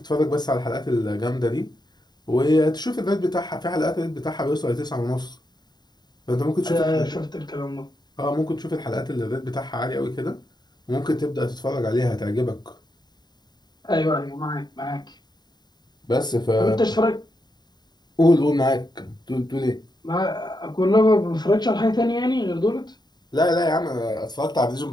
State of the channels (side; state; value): right; late; 0.20 ms